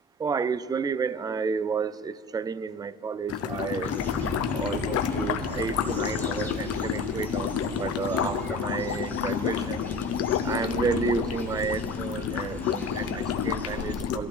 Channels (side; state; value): both; normal; correlation 0.37